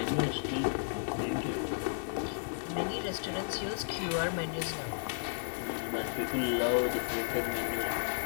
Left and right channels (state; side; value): silent; right; 55 dB below the other